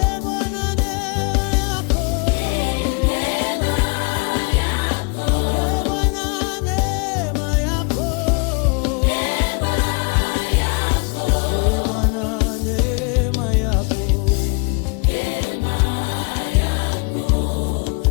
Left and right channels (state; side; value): quieter; right; 33.6 dB